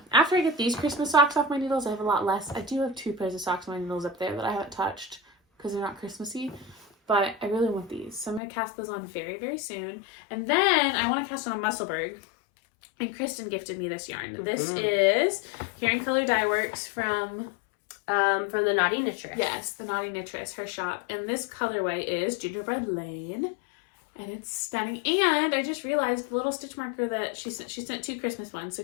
After I get these Christmas socks off my needles, I have a lot less. I do have 2 pairs of socks on my needles up there that I haven't touched because they're not Christmassy. But I really want these. So I'm going to cast those on very, very soon. And then I want to cast on a Musselburgh. And Christen gifted me this yarn. This is Here in Color Dye Works from the Naughty Knitress. Yes, the Naughty Knitress, her shop. And this colorway is Gingerbread Lane. And it's stunning. And I just realized the little stitch marker that she sent 2 Christmas ones. So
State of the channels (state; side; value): drops out; right; at 8.4 s